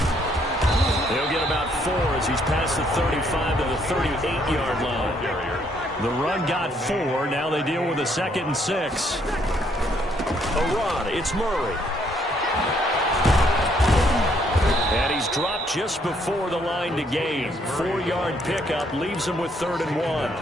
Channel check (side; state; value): both; normal; correlation 0.69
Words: He'll get about 4 as he's past the 35 to the 38-yard line. The run got 4. Now they deal with a 2nd and 6. A run. It's Murray. And he's dropped just before the line to gain. 4-yard pickup leaves him with 3rd and